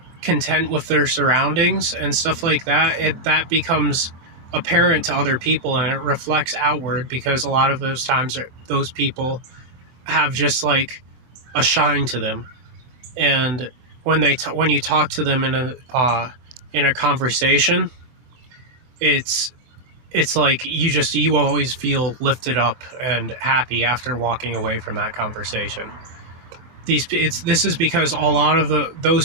content with their surroundings and stuff like that, that becomes apparent to other people, and it reflects outward, because a lot of those times those people have just a shine to them. And when you talk to them in a conversation, it's you always feel lifted up and happy after walking away from that conversation. This is because a lot of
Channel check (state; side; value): late; left; 25 ms